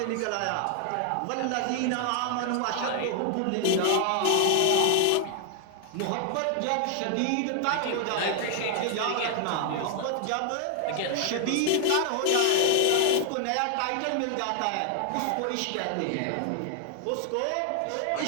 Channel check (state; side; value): different; both; correlation 0.00